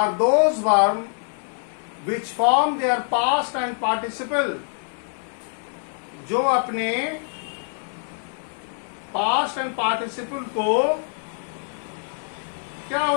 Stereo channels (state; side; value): silent; right; 62 dB below the other